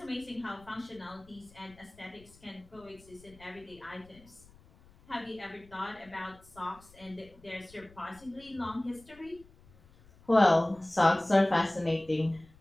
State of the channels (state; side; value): noise; left; rumble, 25 dB below the sound